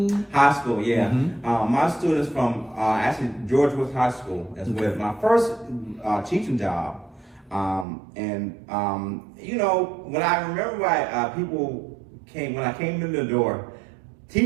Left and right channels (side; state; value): left; drops out; at 7.9 s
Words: High school, yeah. Mm-hmm. My students from actually George Woods High School is with my first teaching job. When I remember when I came in the door,